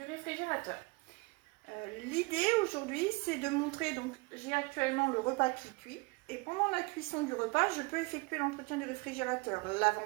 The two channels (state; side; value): quieter; left; 26.9 dB